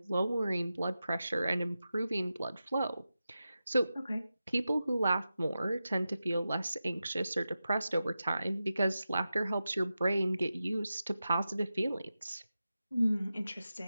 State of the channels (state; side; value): inverted; both; correlation -0.92